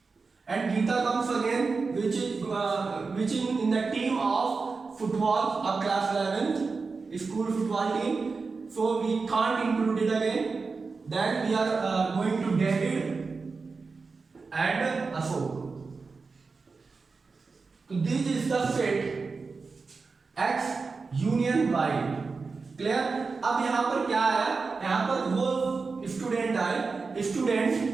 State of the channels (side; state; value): left; quieter; 4.4 dB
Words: and Geeta comes again, which is in the team of football of class 11th school football team. So we can't include it again. Then we are going to David and Ashok. So this is the set X union Y. Clear? अब यहाँ पर क्या है? यहाँ पर वो स्टूडेंट आए,